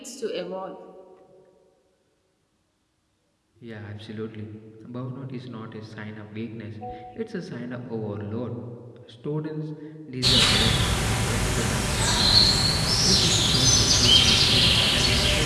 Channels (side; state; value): both; identical; correlation 1.00